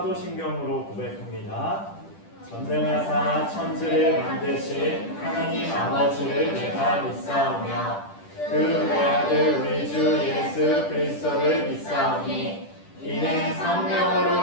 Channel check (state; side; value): late; right; 10 ms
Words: 고백합니다. 전능하사 천지를 만드신 하나님 아버지를 내가 믿사오며 그 외아들 우리 주 예수 그리스도를 믿사오니 이는